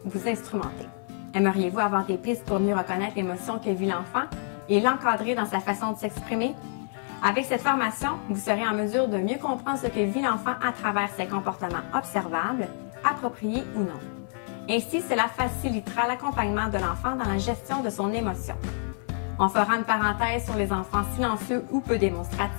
vous instrumenter. Aimeriez-vous avoir des pistes pour mieux reconnaître l'émotion que vit l'enfant et l'encadrer dans sa façon de s'exprimer? Avec cette formation, vous serez en mesure de mieux comprendre ce que vit l'enfant à travers ses comportements observables, appropriés ou non. Ainsi, cela facilitera l'accompagnement de l'enfant dans la gestion de son émotion. On fera une parenthèse sur les enfants silencieux ou peu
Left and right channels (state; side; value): silent; right; 56 dB below the other